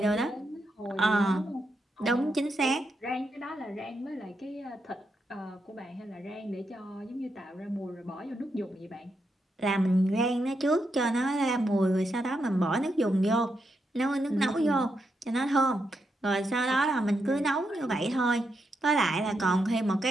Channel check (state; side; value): normal; both; correlation 0.83